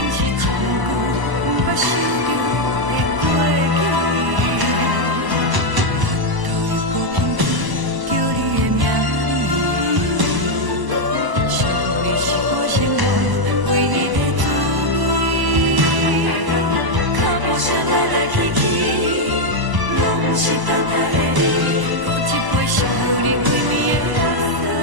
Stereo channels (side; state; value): left; late; 1.0 ms